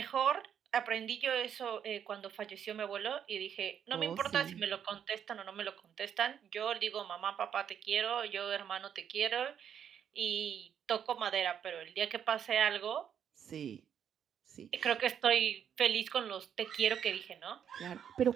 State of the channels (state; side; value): quieter; left; 8.7 dB